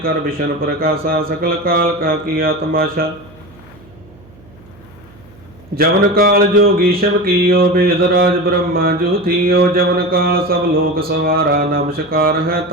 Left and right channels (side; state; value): right; noise; hum, 25 dB below the sound